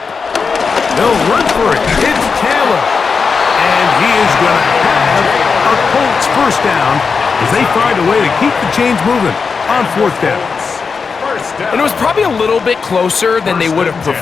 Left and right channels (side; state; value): right; quieter; 5.2 dB